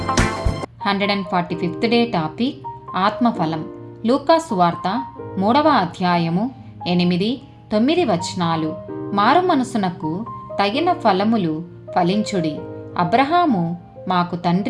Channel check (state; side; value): identical; both; correlation 1.00